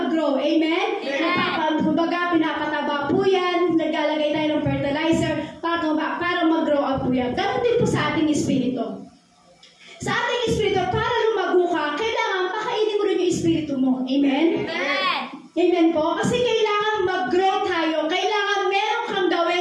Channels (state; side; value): identical; both; correlation 1.00